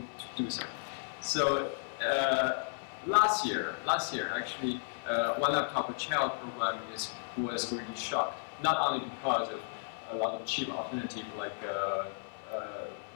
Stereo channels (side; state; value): right; silent; 55 dB below the other